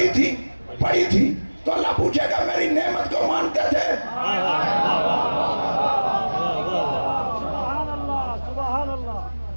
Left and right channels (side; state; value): both; inverted; correlation -1.00